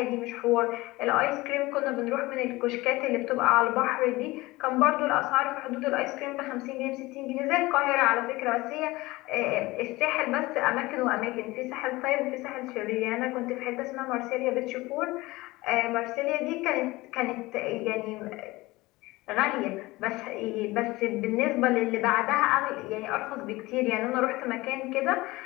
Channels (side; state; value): right; quieter; 20.5 dB